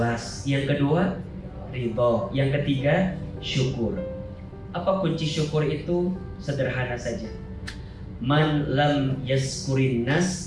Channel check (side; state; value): both; identical; correlation 1.00